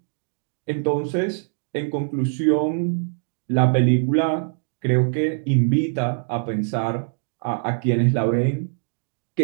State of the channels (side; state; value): left; silent; 62 dB below the other